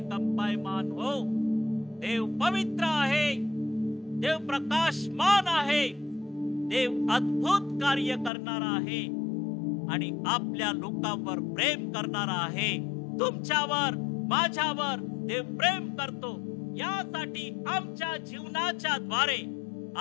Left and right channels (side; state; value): right; drops out; at 8.3 s